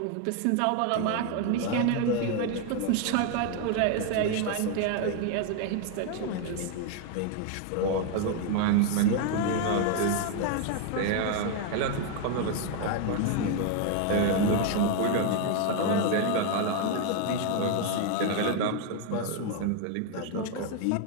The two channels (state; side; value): different; both; correlation 0.01